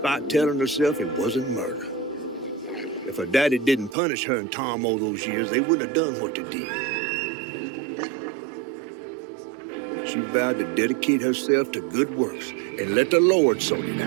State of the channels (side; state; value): left; drops out; at 4.0 s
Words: telling herself it wasn't murder. If her daddy didn't punish her and Tom all those years, they wouldn't have done what they did. She vowed to dedicate herself to good works and let the Lord sort it